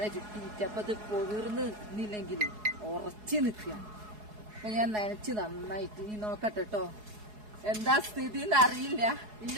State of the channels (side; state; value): left; late; 4.7 ms